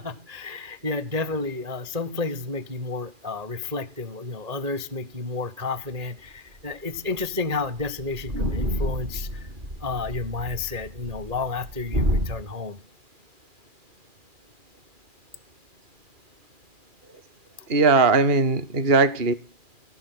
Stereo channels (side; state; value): left; late; 2.4 ms